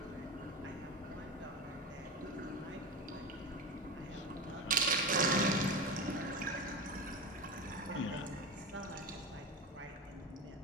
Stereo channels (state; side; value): normal; both; correlation 0.24